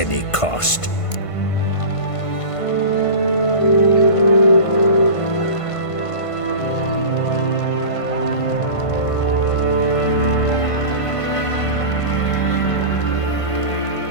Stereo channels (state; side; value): late; right; 1.5 ms